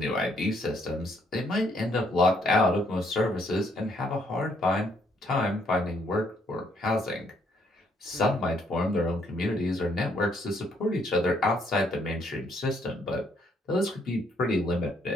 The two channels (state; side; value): normal; both; correlation 0.69